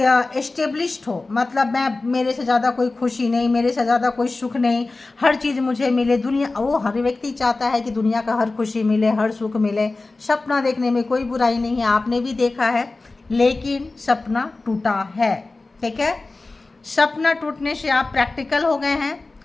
एस्टेब्लिश्ड हो, मतलब मैं, मेरे से ज़्यादा कोई खुशी नहीं, मेरे से ज़्यादा कोई सुख नहीं, हर चीज़ मुझे मिले, दुनिया, वो हर व्यक्ति चाहता है कि दुनिया का हर खुशी मिले, हर सुख मिले। सपना देखने में कोई बुराई नहीं है, आपने भी देखा है, लेकिन सपना टूटा है, ठीक है। सपना टूटने से आप प्रैक्टिकल हो गए हैं,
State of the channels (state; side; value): quieter; right; 3.4 dB